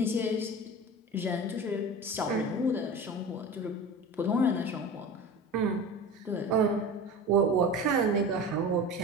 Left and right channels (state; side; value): normal; both; correlation 0.32